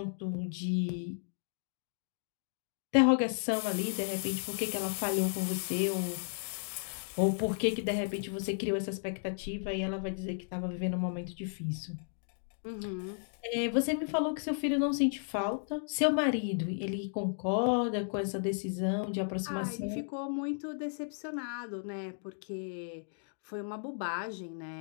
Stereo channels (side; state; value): right; silent; digital silence